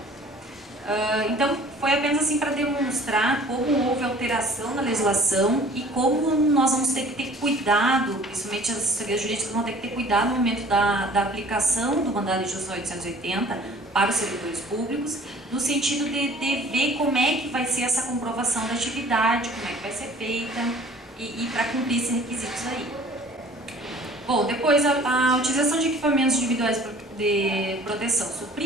Então, foi apenas assim para demonstrar como houve alteração na legislação e como nós vamos ter que ter cuidado, principalmente as assessorias jurídicas vão ter que ter cuidado no momento da aplicação do mandado de injunção 880 para os servidores públicos, no sentido de ver como é que vai ser essa comprovação da atividade, como é que vai ser feita e para cumprir esses requisitos aí. Bom, depois a utilização de equipamentos individuais de proteção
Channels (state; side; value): normal; both; correlation 0.50